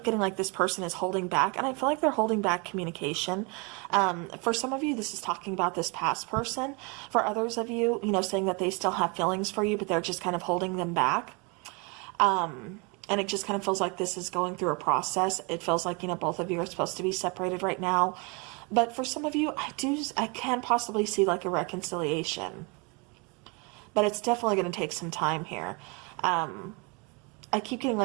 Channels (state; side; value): quieter; left; 31.1 dB